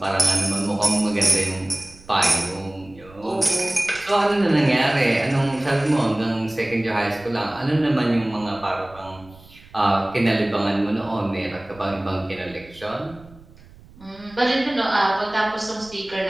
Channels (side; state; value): right; noise; rumble, 23 dB below the sound